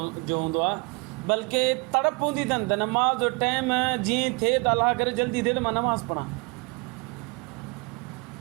जो हूंदो आहे, बल्कि तड़प हूंदी अथनि त नमाज़ जो टाइम जीअं थिए त अलाह करे जल्दी थिए त मां नमाज़ पढ़ां.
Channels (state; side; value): quieter; left; 29.4 dB